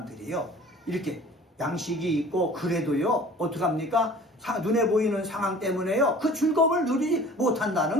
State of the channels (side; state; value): both; normal; correlation 0.46